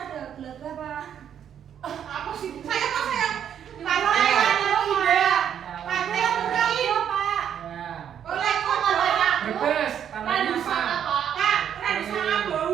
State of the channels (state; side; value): quieter; left; 9.1 dB